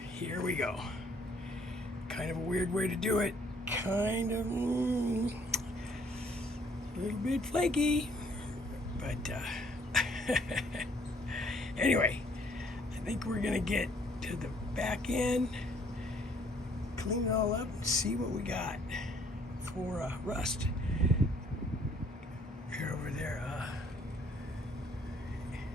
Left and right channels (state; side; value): normal; both; correlation 0.62